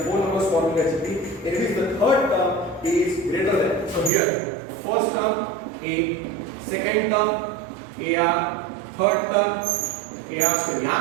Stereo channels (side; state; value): left; drops out; at 4.1 s